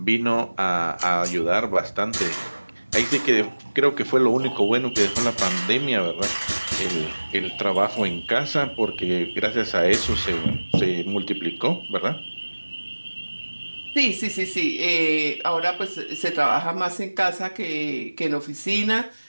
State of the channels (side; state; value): both; inverted; correlation -1.00